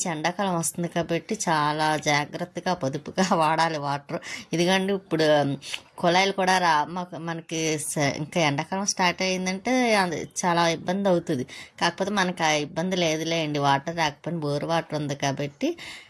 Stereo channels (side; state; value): both; identical; correlation 1.00